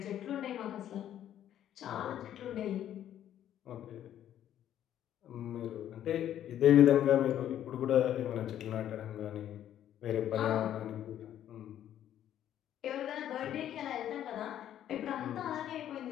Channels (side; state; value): right; quieter; 11.1 dB